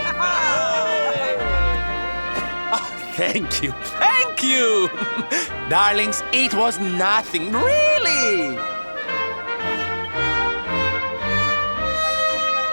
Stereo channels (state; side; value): inverted; both; correlation -1.00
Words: Thank you, thank you! Darlings, it was nothing, really!